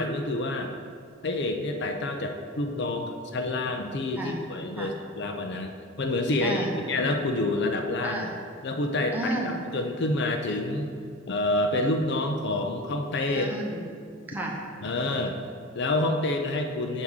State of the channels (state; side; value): normal; both; correlation 0.28